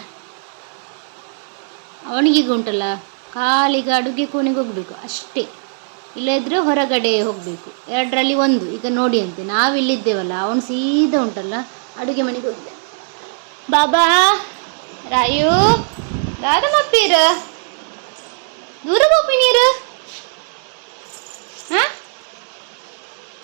ಅವನಿಗೀಗ ಉಂಟಲ್ಲ ಕಾಲಿಗೆ ಅಡುಗೆ ಕೋಣೆಗೆ ಹೋಗ್ಬೇಕು ಅಷ್ಟೇ, ಇಲ್ಲದ್ರೆ ಹೊರಗಡೆ ಹೋಗಬೇಕು, ಎರಡರಲ್ಲಿ ಒಂದು. ಈಗ ನೋಡಿ ಅಂತೆ ನಾವಿಲ್ಲಿದ್ದೇವಲ್ಲ, ಅವನು ಸೀದಾ ಉಂಟಲ್ಲ ಅಡುಗೆ ಮನೆಗೆ ಹೋಗಿದ್ದಾನೆ. ಬಾಬಾ ರಾಯು ದಾದಮಪ್ಪೀರ ದೂರ ಹೋಗಿ ನೀರು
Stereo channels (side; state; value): left; silent; digital silence